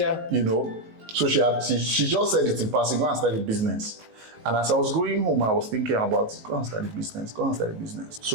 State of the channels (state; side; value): late; left; 19 ms